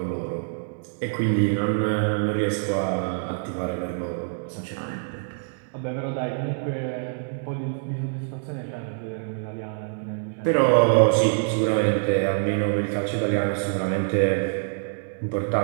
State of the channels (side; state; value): left; silent; digital silence